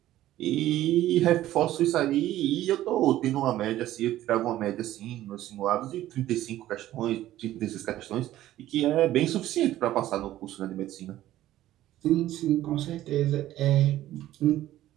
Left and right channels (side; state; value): left; quieter; 14.0 dB